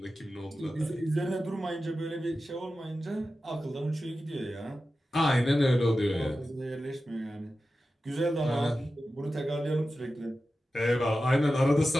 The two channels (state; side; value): normal; both; correlation 0.93